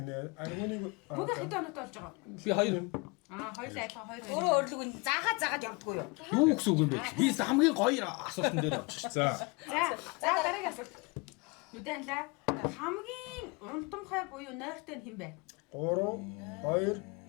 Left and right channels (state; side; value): quieter; right; 28.7 dB